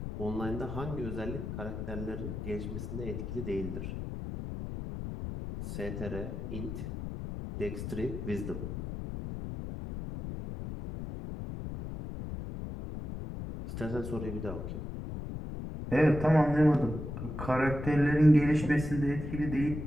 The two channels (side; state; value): left; noise; rumble, 6 dB below the sound